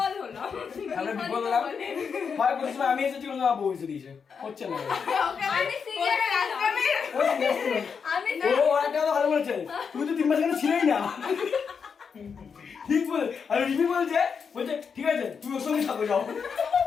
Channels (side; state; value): right; quieter; 6.1 dB